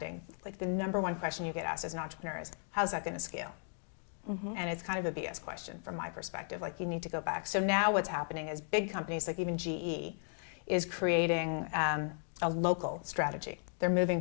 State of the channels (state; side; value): silent; right; 54 dB below the other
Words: like, the number one question you get asked as an entrepreneur is, how's that going to scale? Mm-hmm. And it's kind of a BS question from my perspective. Like, you need to go back. So now what's happening is big companies, like even GE, is creating a local strategy. They're moving